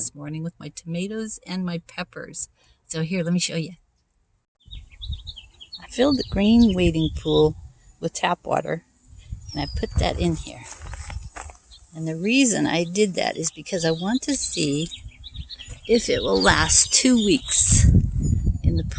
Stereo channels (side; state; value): both; identical; correlation 1.00